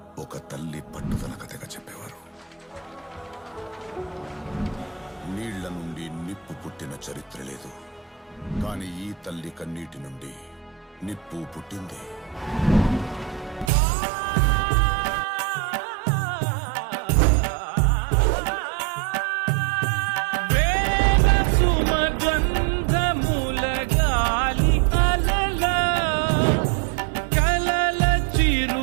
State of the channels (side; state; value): left; drops out; at 13.7 s